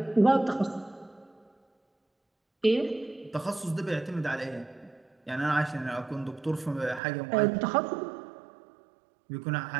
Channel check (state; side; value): drops out; left; at 7.0 s